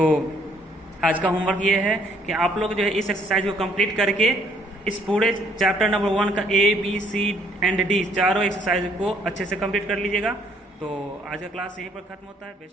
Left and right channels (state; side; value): normal; both; correlation 0.65